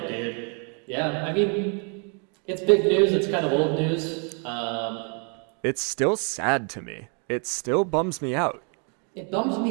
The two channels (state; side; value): quieter; left; 39.2 dB